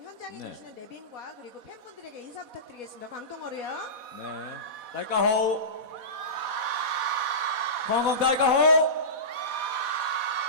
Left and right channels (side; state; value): left; late; 4.1 ms